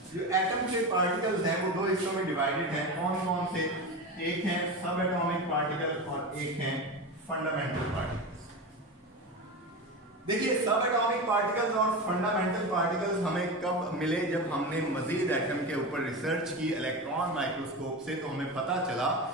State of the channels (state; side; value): normal; both; correlation 0.23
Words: जो एटम के पार्टिकल्स हैं वो दो हिस्सों में डिवाइडेड हैं। कौन कौन से? एक है सब एटॉमिक पार्टिकल और एक है फंडामेंटल पार्टिकल्स। देखिए, सब एटॉमिक पार्टिकल्स और फंडामेंटल पार्टिकल्स हमें कब मिले? जब हमने मजीद एटम के ऊपर रिसर्च की इलेक्ट्रॉन माइक्रोस्कोप से, तो हमें पता चला